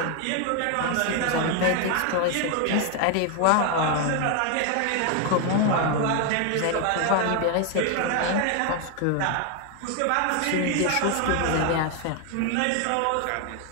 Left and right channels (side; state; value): both; different; correlation 0.01